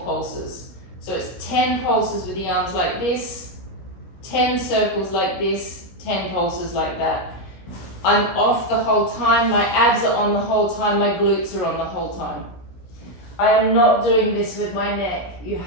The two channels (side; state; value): right; late; 17 ms